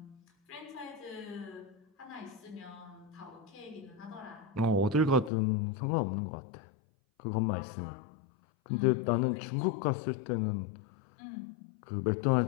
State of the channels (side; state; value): right; drops out; at 5.3 s